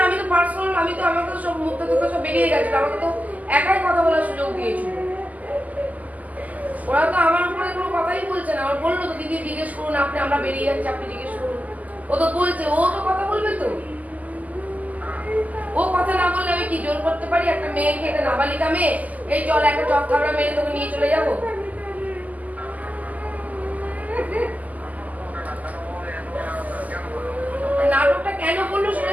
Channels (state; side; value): late; left; 0.077 ms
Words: আমি তো পার্সোনাল, আমি তো আমাকে তো সব মুখটা থেকে সব বেরিয়ে গেছিল, আমাকে তো একাই কথা বলার সুযোগ দিয়েছিল। ওরা তো আমার উপরে কোনো কথাই বলছে না। আমার বললো তো দিদি জিজ্ঞেস করুন, আপনি আমরা বেরিয়ে যাচ্ছি আপনি জিজ্ঞেস করুন। ও তো বলছে, ও তো কথা বলবে তো। ও কথা না বললে আমি কি জোর করতে পারি একটা মেয়েকে, একটা নাবালিকা মেয়ে, এই চল একটা চক থাবড়া মেরে তোকে নিয়ে চলে যাবো? নাটকটা কেন বললো